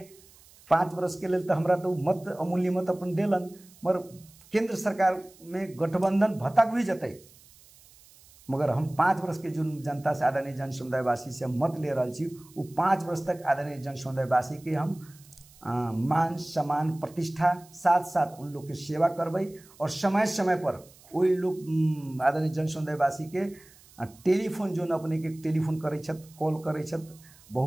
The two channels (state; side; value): noise; right; hiss, 25 dB below the sound